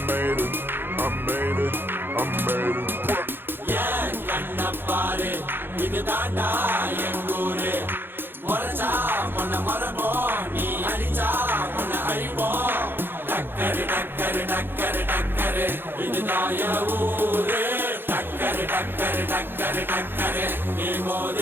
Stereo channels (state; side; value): late; left; 0.10 ms